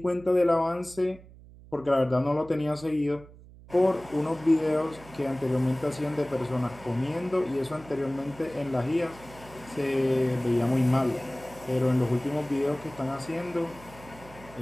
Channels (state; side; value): noise; right; hum, 20 dB below the sound